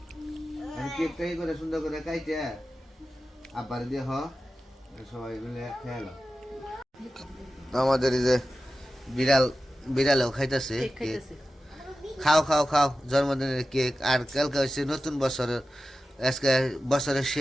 কেক টাই করে সুন্দর করে কাইতে আবার দিয়ে হ সবাই মিলে খেয়ালো আমাদের এই যে বিড়ালও খাইতেছে কেক খাইতেছে খাও খাও খাও জন্মদিনের কেক আর কালকে হচ্ছে নতুন বছরের আজকে বছরের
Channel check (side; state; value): both; normal; correlation 0.94